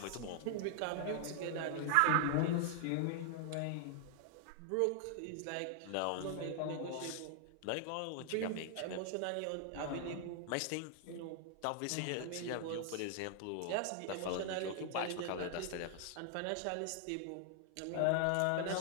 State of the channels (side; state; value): both; different; correlation 0.00